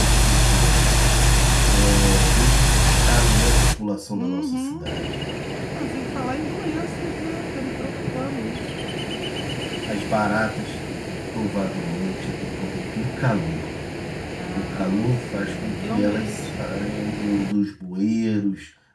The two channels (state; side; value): identical; both; correlation 1.00